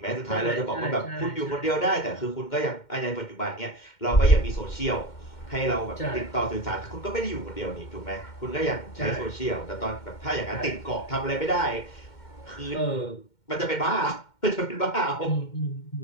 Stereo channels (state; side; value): late; right; 2.1 ms